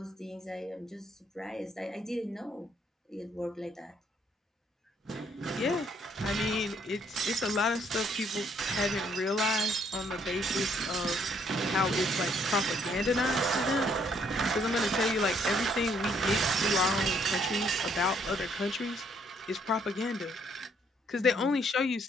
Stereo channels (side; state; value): both; normal; correlation 0.67